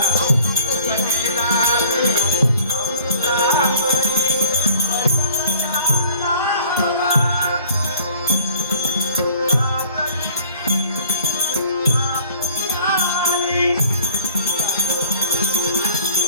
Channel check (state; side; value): inverted; both; correlation -0.54